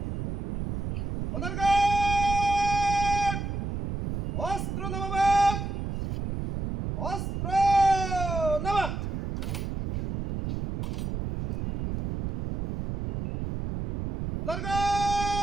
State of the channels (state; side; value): noise; right; rumble, 4 dB below the sound